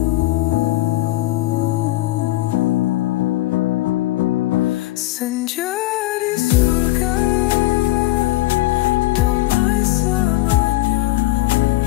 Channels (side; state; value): right; quieter; 17.8 dB